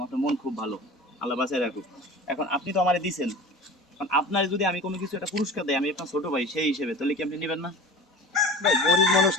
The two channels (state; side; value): normal; both; correlation 0.37